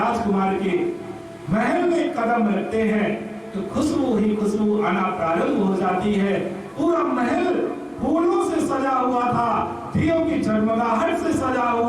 के महल में कदम रखते हैं तो खुशबू ही खुशबू आना प्रारंभ हो जाती है। पूरा महल फूलों से सजा हुआ था, दियों की जगमगाहट से सजा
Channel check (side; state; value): both; identical; correlation 1.00